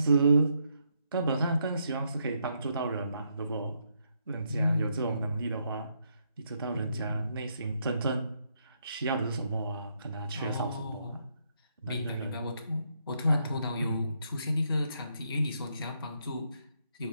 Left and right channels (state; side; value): inverted; both; correlation -0.77